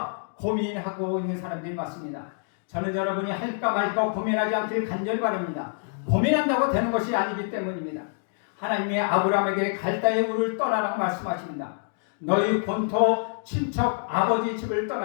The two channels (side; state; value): right; silent; digital silence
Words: 고민하고 있는 사람들이 많습니다. 저는 여러분이 할까 말까 고민하지 않길 간절히 바랍니다. 고민한다고 되는 것이 아니기 때문입니다. 하나님이 아브라함에게 갈대의 우를 떠나라고 말씀하십니다. 너희 본토 친척 아버지 집을